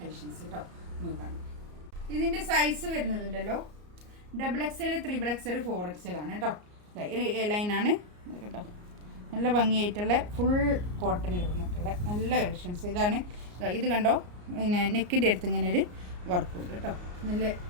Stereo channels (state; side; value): late; left; 34 ms